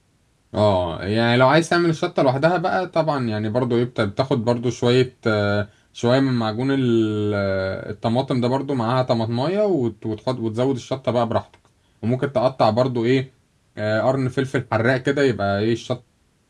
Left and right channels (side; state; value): both; identical; correlation 1.00